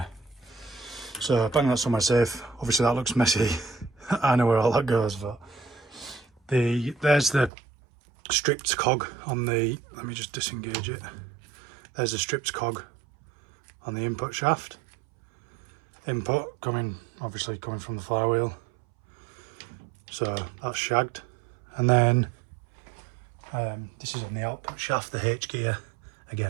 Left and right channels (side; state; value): left; drops out; at 7.5 s